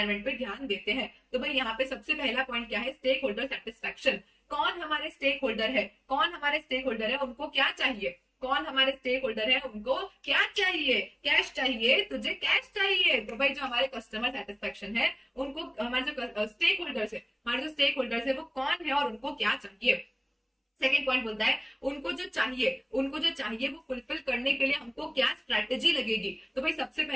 पे ध्यान देते हैं। तो भाई यहाँ पे सबसे पहला पॉइंट क्या है, स्टेक होल्डर सेटिस्फैक्शन। कौन हमारे स्टेक होल्डर है, कौन हमारे स्टेक होल्डर है, उनको क्या चाहिए, कौन हमारे स्टेक होल्डर है, उनको क्या चाहिए, कैश चाहिए, तुझे कैश चाहिए। तो भाई जो हमारे कस्टमर सेटिस्फेक्शन है, उनको हमारे जो स्टेक होल्डर्स है, हमारे जो स्टेक होल्डर्स है वो कौन है और उनको क्या चाहिए। सेकेंड पॉइंट बोलता है उनको जो चाहिए वो फुलफिल करने के लिए हमको क्या स्ट्रैटेजी लगेगी। तो भाई सबसे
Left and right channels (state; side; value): identical; both; correlation 1.00